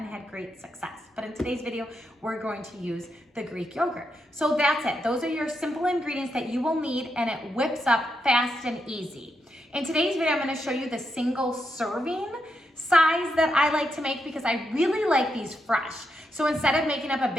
had great success. But in today's video, we're going to use the Greek yogurt. So that's it. Those are your simple ingredients that you will need, and it whips up fast and easy. In today's video, I'm going to show you the single serving size that I like to make because I really like these fresh. So instead of making up a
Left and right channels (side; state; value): both; normal; correlation 0.83